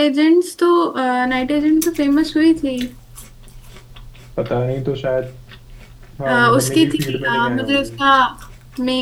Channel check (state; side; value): identical; both; correlation 1.00